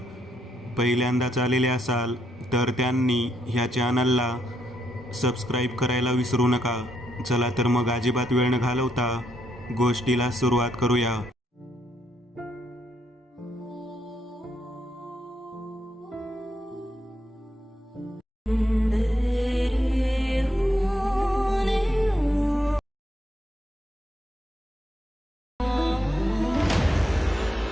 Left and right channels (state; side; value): normal; both; correlation 0.78